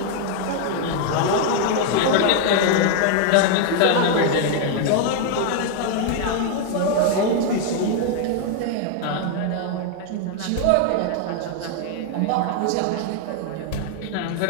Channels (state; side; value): different; both; correlation 0.00